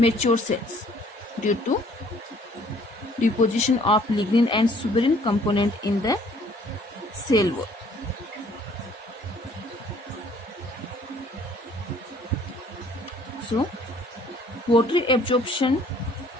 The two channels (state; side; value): normal; both; correlation 0.59